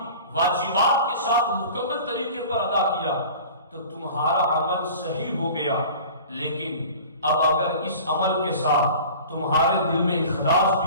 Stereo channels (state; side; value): inverted; both; correlation -0.41